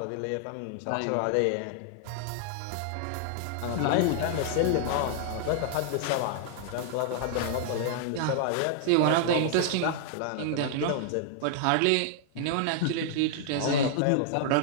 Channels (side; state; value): both; different; correlation -0.01